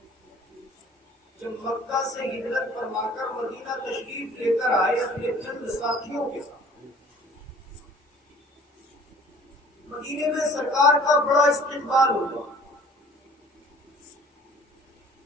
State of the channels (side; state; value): both; normal; correlation 0.50